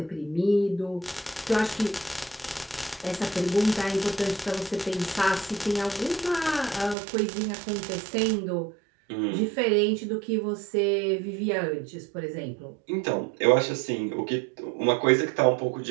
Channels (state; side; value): drops out; left; at 7.0 s